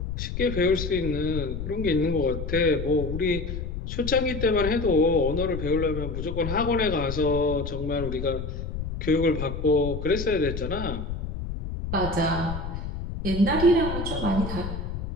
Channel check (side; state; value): left; noise; rumble, 5 dB below the sound